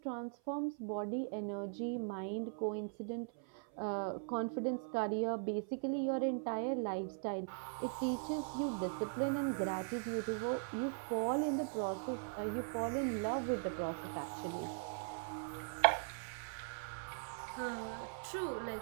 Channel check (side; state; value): left; silent; 51 dB below the other